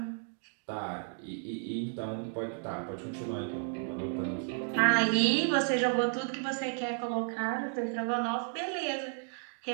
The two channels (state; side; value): silent; left; 56 dB below the other